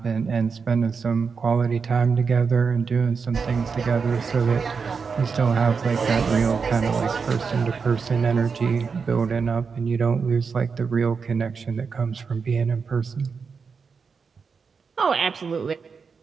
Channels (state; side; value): quieter; left; 5.4 dB